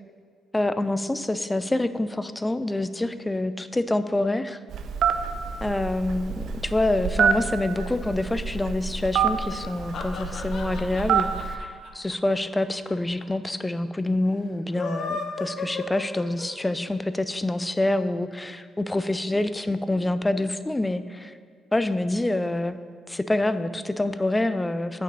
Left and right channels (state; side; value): normal; both; correlation 0.89